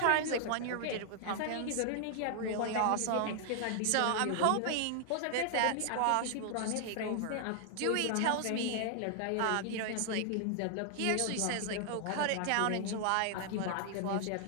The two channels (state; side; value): different; both; correlation 0.00